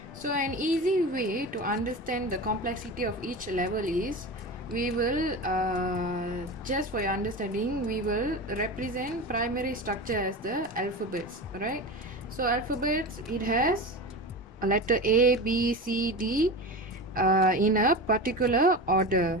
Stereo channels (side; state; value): both; normal; correlation 0.27